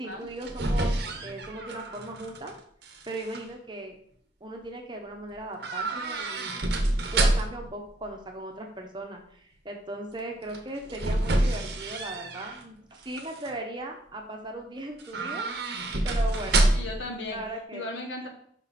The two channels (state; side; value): normal; both; correlation 0.68